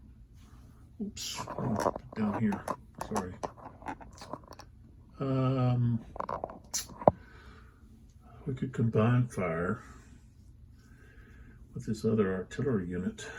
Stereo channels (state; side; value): identical; both; correlation 1.00